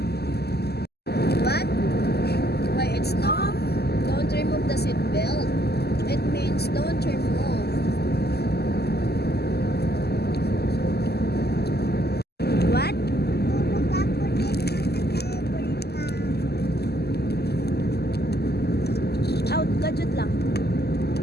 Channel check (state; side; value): late; right; 0.47 ms